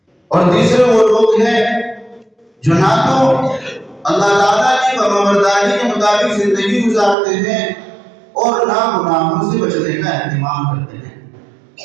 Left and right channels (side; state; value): left; drops out; at 7.2 s